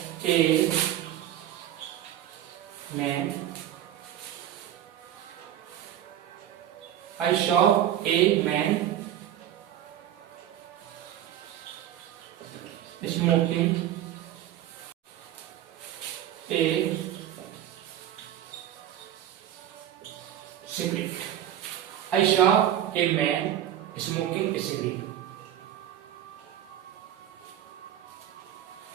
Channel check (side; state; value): left; quieter; 11.4 dB